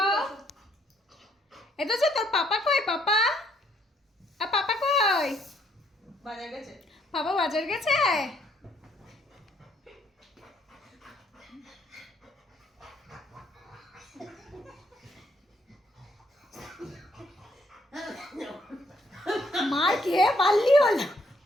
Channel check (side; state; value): both; normal; correlation 0.69